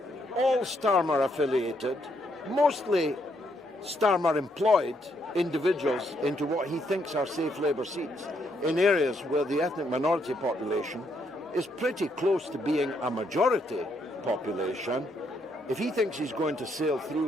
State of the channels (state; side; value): normal; both; correlation 0.74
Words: all Starmer affiliated, mostly Starmer employed individuals into what he thinks are safe Labour seats in areas where the ethnic minority population is pretty close to being a majority population. If he thinks he's going to sail